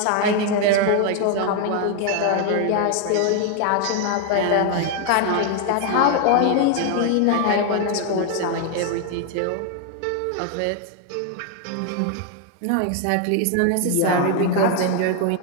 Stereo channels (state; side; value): different; both; correlation 0.00